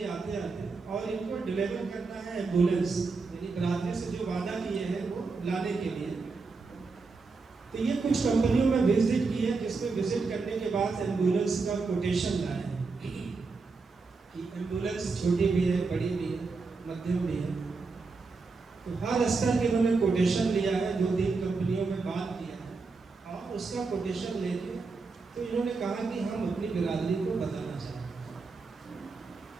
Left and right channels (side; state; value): left; quieter; 4.3 dB